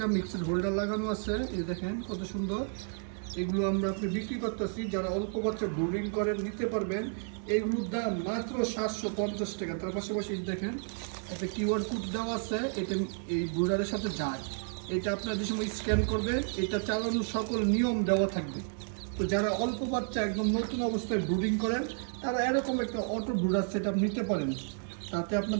হোল্ডার লাগানো আছে, এই দেখেন কত সুন্দর। এগুলো আমরা আপনি বিক্রি করতেছি, যারা অল্প বাচ্চা ব্রুডিং করেন নিতে পারবেন। এগুলোর দাম মাত্র 750 টাকা। তার পাশাপাশি দেখেন একটা কিউআর কোড দেওয়া আছে, এটা এই ব্রুডারের সাথে যায়। এটা আপনার যে সময় স্ক্যান করবেন, এটা চালানোর সকল নিয়ম দেওয়া থাকবে। তো যারা অল্প বাচ্চা একদম নতুন অবস্থায় ব্রুডিং করেন, তারা এরকম একটা অটো ব্রুডার সেটআপ নিতে পারেন। তাতে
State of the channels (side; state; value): left; silent; 57 dB below the other